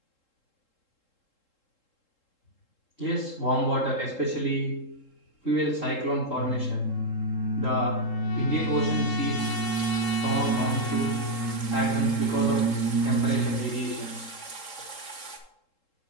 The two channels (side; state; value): right; late; 3.7 ms